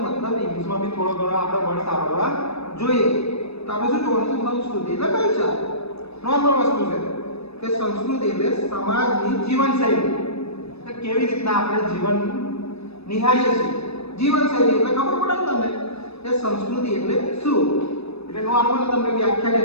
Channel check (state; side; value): late; right; 0.79 ms